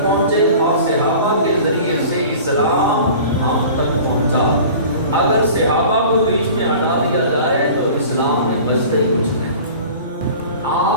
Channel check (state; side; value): inverted; both; correlation -0.42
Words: پہنچے، اور صحابہ کے ذریعے سے اسلام ہم تک پہنچا۔ اگر صحابہ کو بیچ میں ہٹا دیا جائے تو اسلام میں بچتا ہی کچھ نہیں۔